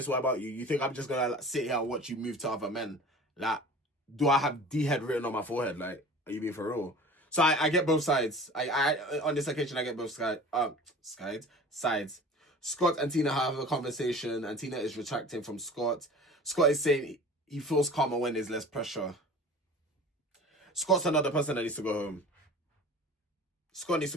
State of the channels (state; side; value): normal; both; correlation 0.41